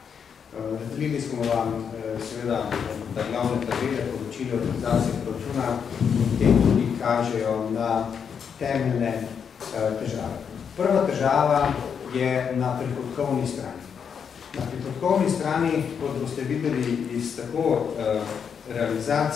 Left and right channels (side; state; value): right; quieter; 7.1 dB